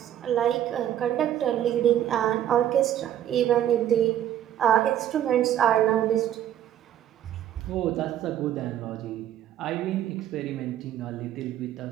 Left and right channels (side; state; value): left; quieter; 11.2 dB